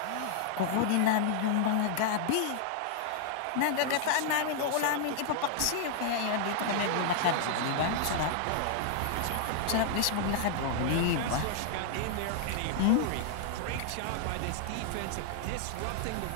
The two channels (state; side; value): different; both; correlation -0.01